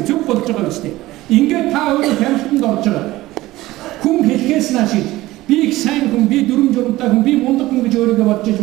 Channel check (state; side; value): quieter; left; 17.5 dB